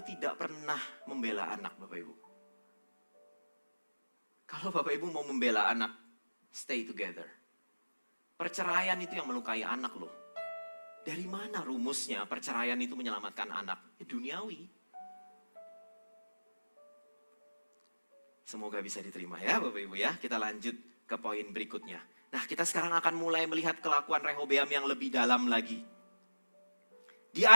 tidak pernah membela anak Bapak Ibu. Kalau Bapak Ibu mau membela anak, stay together. Perceraian itu yang melukai anak loh. Dari mana rumusnya perceraian itu menyelamatkan anak? Duniawi. Semoga bisa diterima ya Bapak Ibu ya. Kita lanjut ke poin berikutnya. Nah, kita sekarang akan mulai melihat kelakuan Rehobeam yang lebih dalam lagi. Di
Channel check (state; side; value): inverted; both; correlation -1.00